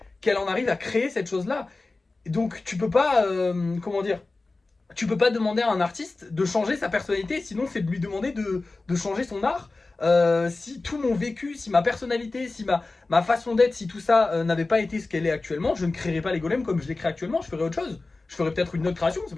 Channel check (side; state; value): right; quieter; 3.4 dB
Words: qu'elle en arrive à créer cette chose-là. Donc tu peux pas, comment dire, tu peux pas demander à un artiste de changer sa personnalité, sinon c'est de lui demander de changer son art. Si tout mon vécu, si ma personnalité, si ma façon d'être, si tout ça n'avait pas été ce qu'elle est actuellement, je ne créerais pas les golems comme je les crée actuellement, je ferais autre chose. Je ferais peut-être une autre création, c'est